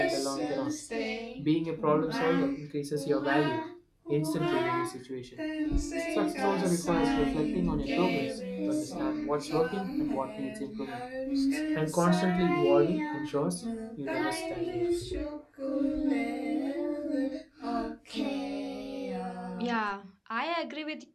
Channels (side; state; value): both; identical; correlation 1.00